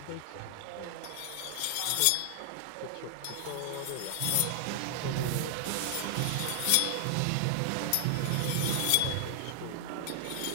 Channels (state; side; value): different; both; correlation 0.00